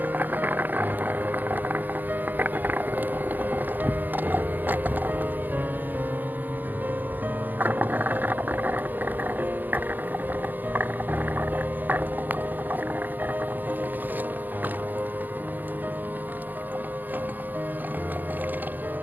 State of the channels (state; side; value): late; left; 0.086 ms